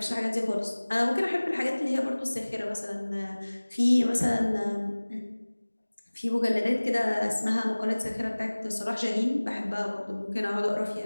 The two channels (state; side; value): inverted; both; correlation -1.00